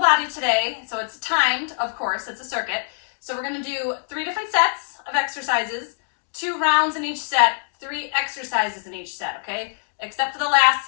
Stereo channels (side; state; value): right; silent; digital silence